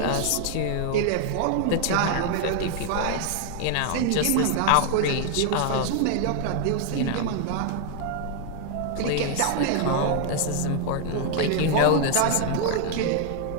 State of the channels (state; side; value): different; both; correlation 0.00